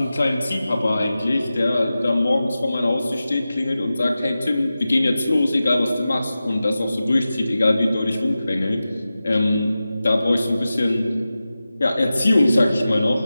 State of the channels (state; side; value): inverted; both; correlation -0.94